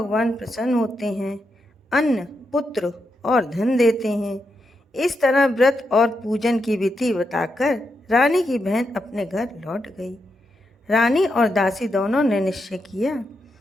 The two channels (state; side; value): normal; both; correlation 0.84